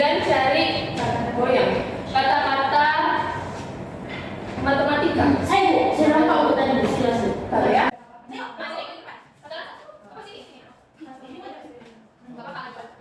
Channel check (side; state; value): both; identical; correlation 1.00